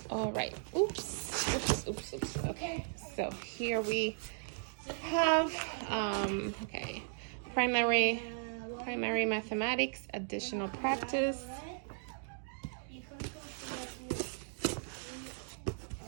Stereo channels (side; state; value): left; silent; digital silence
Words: all right. Oops. Okay, so here we have, okay, primary mathematics, additional practice.